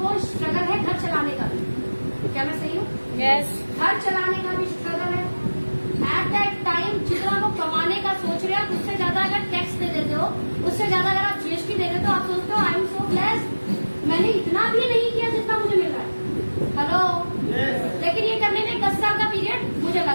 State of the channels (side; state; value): both; inverted; correlation -1.00